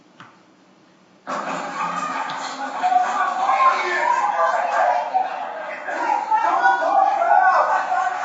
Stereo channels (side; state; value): both; identical; correlation 1.00